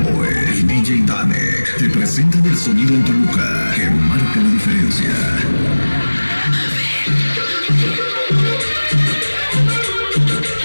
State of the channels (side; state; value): both; inverted; correlation -1.00